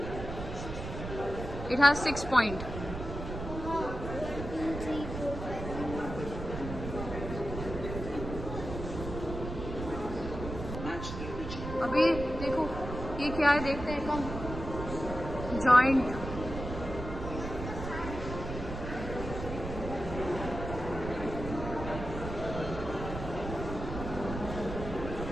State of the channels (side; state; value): right; noise; rumble, 7 dB below the sound